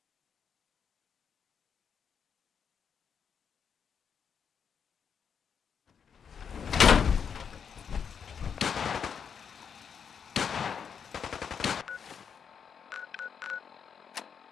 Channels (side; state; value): right; quieter; 7.0 dB